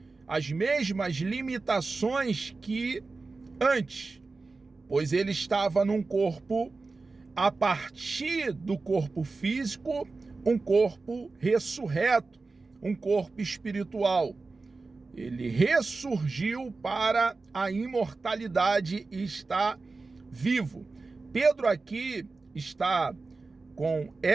as mesmas limitações que antes, pois ele estava num corpo, a partir do corpo físico, um corpo ressurreto, um corpo espiritual. Ele ressurgiu para a imortalidade e está vivo. Pedro aqui está com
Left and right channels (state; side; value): quieter; left; 3.8 dB